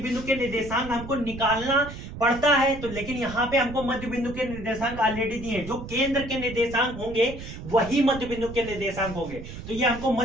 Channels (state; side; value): noise; right; rumble, 11 dB below the sound